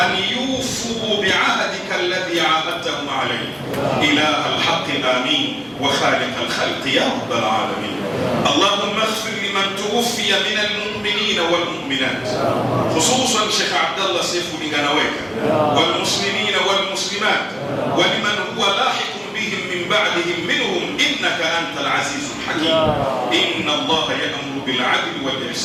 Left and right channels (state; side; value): identical; both; correlation 1.00